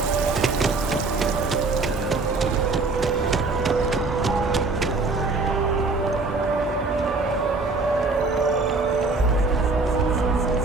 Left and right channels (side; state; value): left; quieter; 3.7 dB